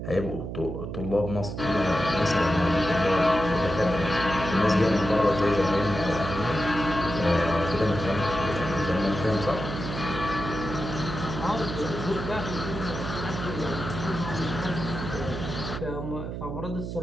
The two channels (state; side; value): noise; right; hum, 6 dB below the sound